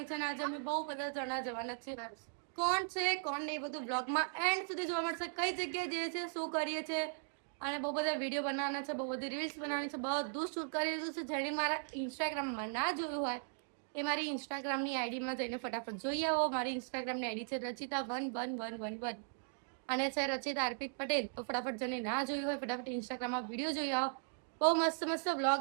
છે અને આજે અમે બહુ બધા જણા જવાના છે. કોણ છે કોણ નહીં બધું બ્લોગમાં એન્ડ સુધી જોવા મળશે. કઈ જગ્યાએ જઈએ છે, શું કરીએ છીએ અને બહુ બધા વિડીયો બનાવવાના છે, બહુ બધી રીલ્સ બનાવવાની છે, બધું શૂટ કરી દીધું છે. જેણે મારા ઇન્સ્ટાગ્રામમાં ના જોયું હોય એ મારી ઇન્સ્ટાગ્રામની આઈડીમાં જઈને ફટાફટ જોઈ આવો. મારી ઇન્સ્ટાગ્રામની આઈડી છે રચિતા111111 અને છે રચિતા અર્પિત પટેલ. તો ફટાફટ જેને ના જોયું હોય ફટાફટ ઇન્સ્ટાગ્રામમાં વિડીયો જોઈ આવો. બહુ મસ્ત મસ્ત વ્લોગ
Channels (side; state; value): left; silent; digital silence